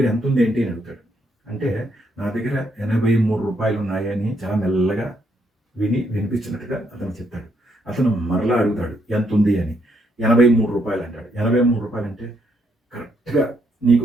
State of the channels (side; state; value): both; normal; correlation 0.74